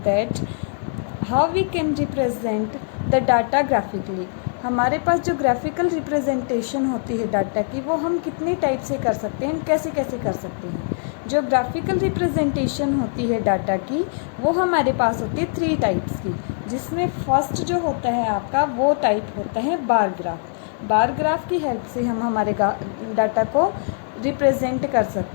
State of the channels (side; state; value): right; silent; 64 dB below the other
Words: that how we can represent the data graphically. हमारे पास जो graphical representation होती है data की वो हम कितने type से कर सकते हैं, कैसे कैसे कर सकते हैं. जो ग्राफिकल रिप्रेजेंटेशन होती है डाटा की वो हमारे पास होती है 3 टाइप्स की, जिसमें फर्स्ट जो होता है आपका वो टाइप होता है बार ग्राफ. बार ग्राफ की हेल्प से हम हमारे डाटा को रिप्रेजेंट कर